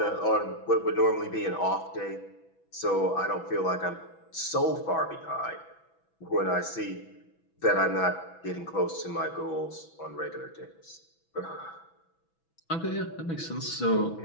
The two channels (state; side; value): late; right; 6.1 ms